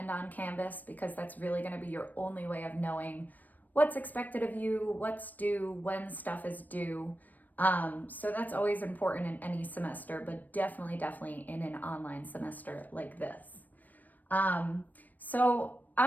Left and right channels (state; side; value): late; right; 0.085 ms